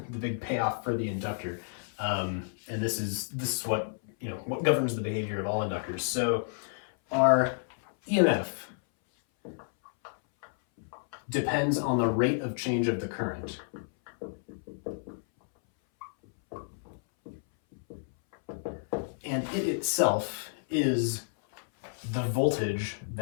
big payoff for the inductor, and this is what what governs the behavior of all inductors. So our EMF depends on the rate of change of the current. And it itself is the voltage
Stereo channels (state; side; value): silent; right; 57 dB below the other